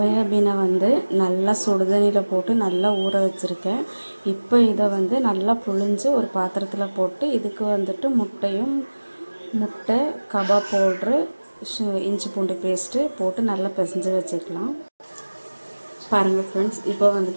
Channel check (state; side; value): inverted; both; correlation -1.00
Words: நல்லா சுடுதண்ணியில் போட்டு நல்லா ஊற வச்சுருக்கேன். இப்போ இதை நல்லா புழிஞ்சு ஒரு பாத்திரத்தில் போட்டு இதுக்கு முட்டை, கபாப் பவுட்ரு, இஞ்சி பூண்டு பேஸ்ட்டு போட்டு நல்லா பிசைஞ்சு வச்சுக்கலாம். பாருங்கள் ஃப்ரெண்ட்ஸ், இப்போ